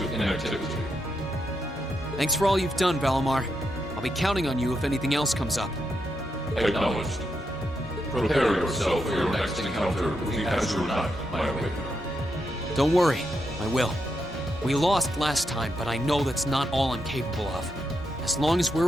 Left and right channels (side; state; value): both; normal; correlation 0.83